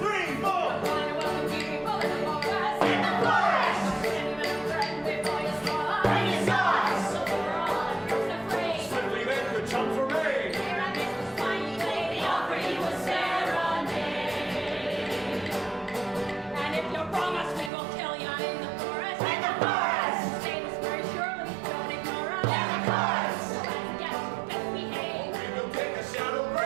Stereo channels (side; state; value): left; drops out; at 17.7 s